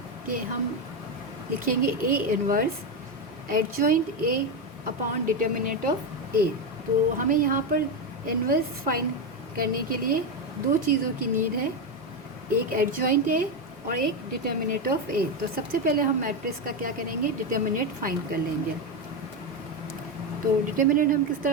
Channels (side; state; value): both; normal; correlation 0.11